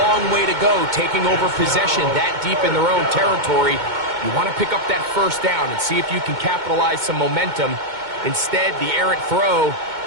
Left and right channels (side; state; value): left; late; 2.2 ms